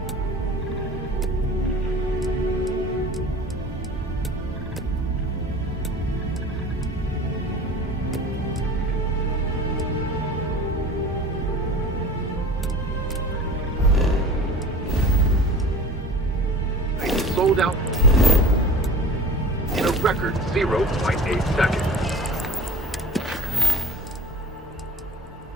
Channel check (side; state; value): both; normal; correlation 0.39